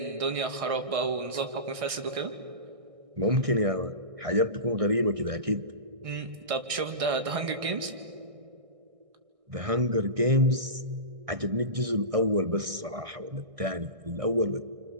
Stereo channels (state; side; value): late; left; 1.6 ms